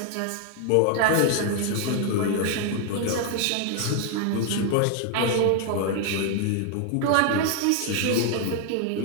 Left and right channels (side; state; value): both; different; correlation 0.00